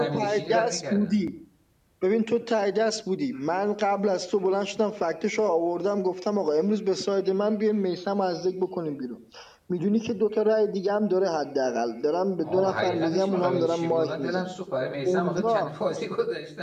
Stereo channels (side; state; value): both; identical; correlation 1.00